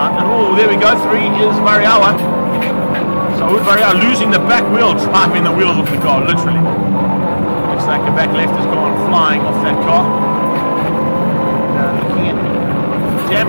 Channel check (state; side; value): inverted; both; correlation -1.00